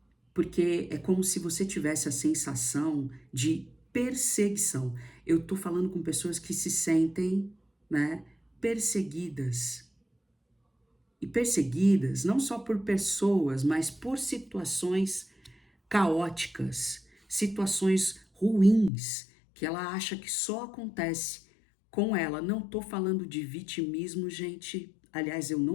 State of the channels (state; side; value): drops out; right; at 18.9 s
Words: Porque é como se você tivesse a sensação de perseguição. Eu tô falando com pessoas que se sentem, né, perseguidas. E perseguidas não só por pessoas, mas por situações caóticas, situações ruins, que ela acha que só acontece com ela. Não tô falando de vitimismo, gente. Aliás, eu